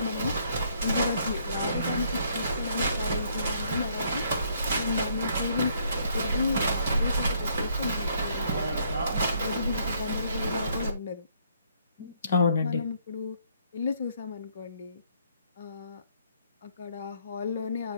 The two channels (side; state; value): both; inverted; correlation -0.68